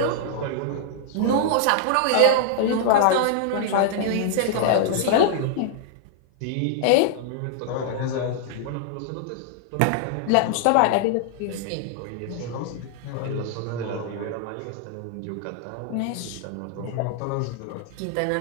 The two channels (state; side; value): different; both; correlation -0.01